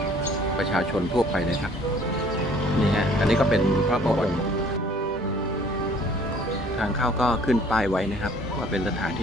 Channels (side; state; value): both; normal; correlation 0.55